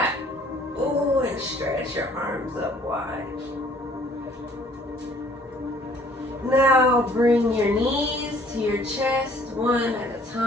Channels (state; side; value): normal; both; correlation 0.58